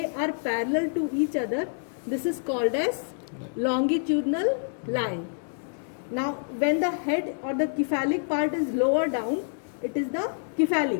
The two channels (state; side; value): silent; right; digital silence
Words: are parallel to each other, this is called as longitudinal line. Now when the head or the cephalic part is lower down, it is the